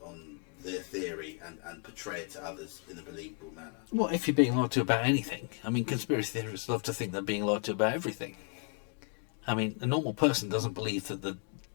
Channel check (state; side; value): quieter; right; 38.4 dB